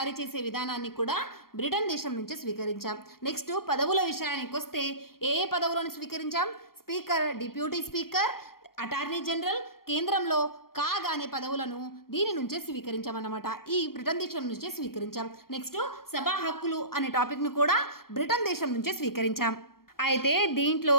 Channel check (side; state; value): right; late; 0.93 ms